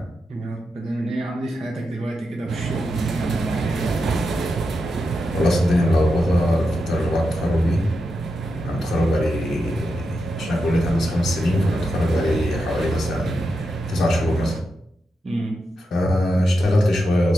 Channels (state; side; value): normal; both; correlation 0.87